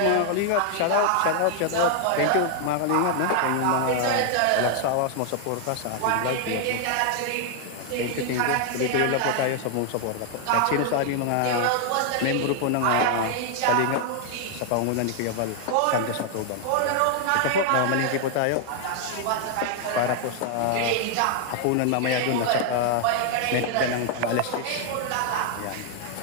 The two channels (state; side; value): different; both; correlation 0.00